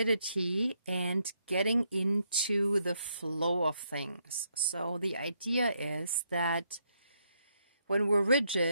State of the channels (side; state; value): both; inverted; correlation -0.77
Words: and getting into the flow of things. So the idea is that when we're